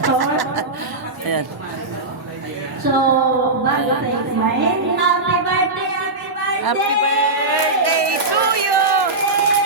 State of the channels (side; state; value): left; quieter; 3.1 dB